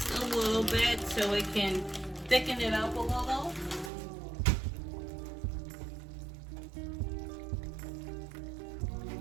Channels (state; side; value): drops out; left; at 3.9 s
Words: a little bit so it can thicken it up a little.